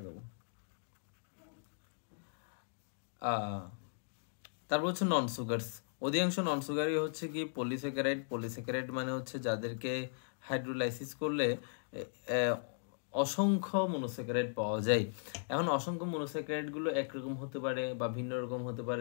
তারপর হচ্ছে নন সুগারস। অধিকাংশ নন সুগারই হচ্ছে কি পলিস্যাকারাইড। পলিস্যাকারাইড মানে হচ্ছে যাদেরকে হাইড্রোলাইসিস করলে অসংখ্য মনোস্যাকারাইড পাওয়া যায়। এখন অসংখ্য মনোস্যাকারাইড গুলো একরকম হতে পারে বা ভিন্ন রকম হতে পারে,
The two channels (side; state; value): right; silent; digital silence